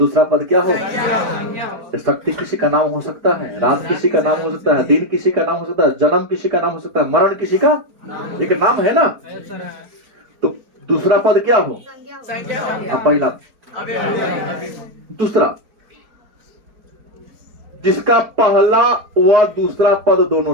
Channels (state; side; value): late; left; 4.4 ms